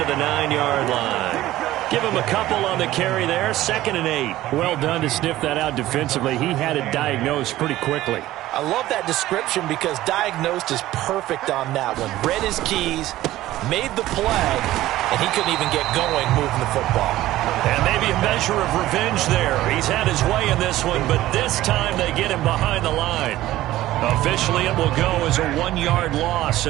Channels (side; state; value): left; quieter; 15.4 dB